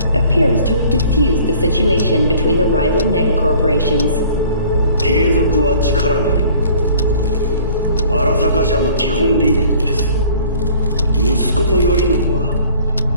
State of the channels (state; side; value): inverted; both; correlation -0.52